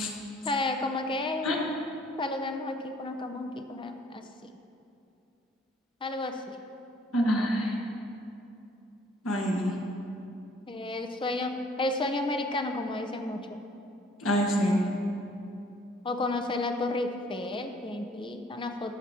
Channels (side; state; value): both; normal; correlation 0.58